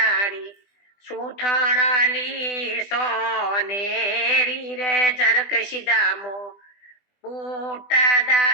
સુથણલી સોનેરી રે. જરક સીધામો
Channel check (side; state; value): right; late; 20 ms